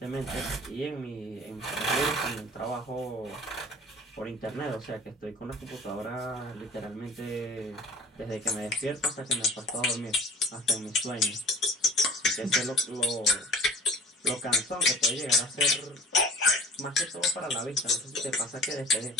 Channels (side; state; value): both; normal; correlation 0.45